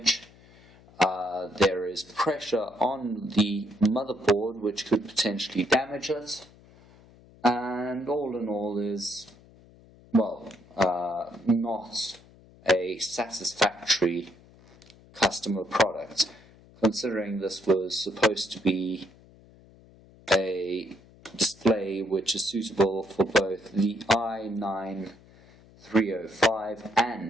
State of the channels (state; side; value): noise; left; hum, 25 dB below the sound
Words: There is pressure on the motherboard which could potentially damage it, and all in all is, well, not a satisfactory customer product, considering this was supposed to be a display which is suitable for both the I9305